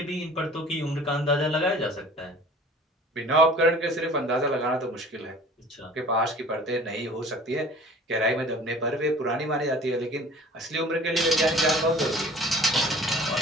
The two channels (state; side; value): normal; both; correlation 0.46